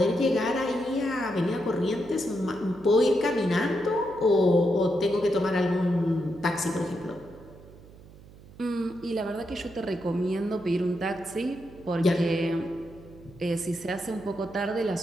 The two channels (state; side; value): noise; right; hum, 21 dB below the sound